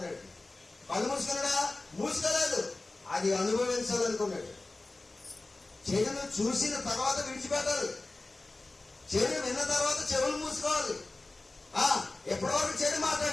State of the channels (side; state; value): right; quieter; 3.1 dB